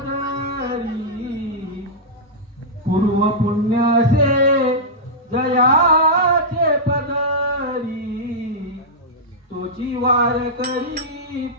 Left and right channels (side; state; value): both; normal; correlation -0.10